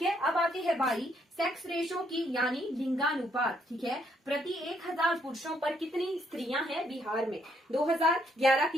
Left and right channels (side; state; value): both; normal; correlation 0.71